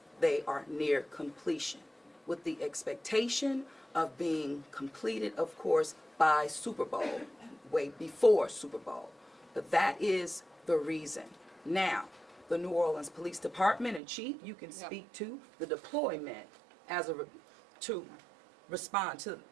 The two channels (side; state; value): left; drops out; at 14.0 s